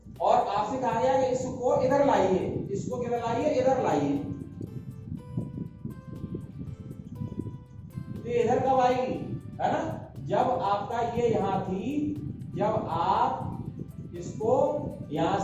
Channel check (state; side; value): identical; both; correlation 1.00